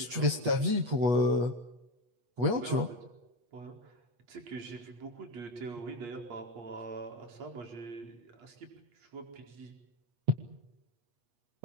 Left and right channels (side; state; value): left; late; 8.4 ms